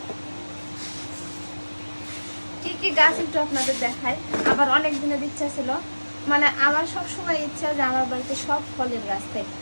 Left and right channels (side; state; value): both; inverted; correlation -1.00